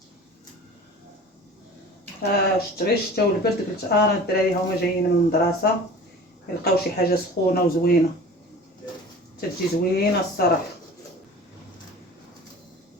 شت غير الشتا والبرد قلت انا الدراري هما جايين من المدرسه يلقاو شي حاجه سخونه وزوينه، تجي زوينه الصراحه.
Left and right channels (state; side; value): normal; both; correlation 0.41